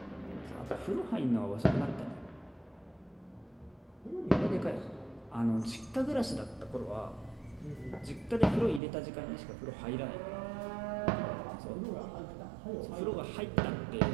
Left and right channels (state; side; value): drops out; left; at 8.8 s